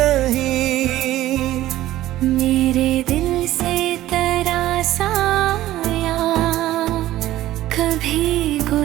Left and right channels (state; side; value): quieter; left; 14.7 dB